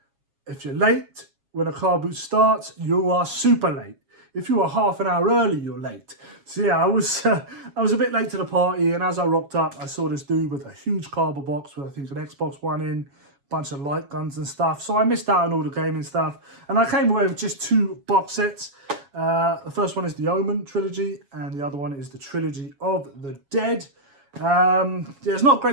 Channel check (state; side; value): late; left; 7.3 ms